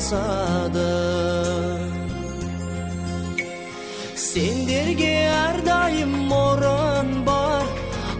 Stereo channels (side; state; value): both; identical; correlation 1.00